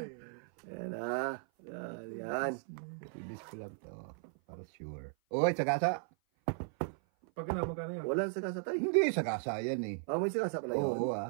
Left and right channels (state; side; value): silent; left; 54 dB below the other